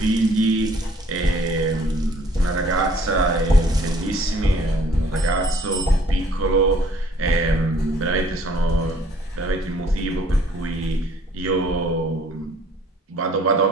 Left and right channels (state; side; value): normal; both; correlation 0.58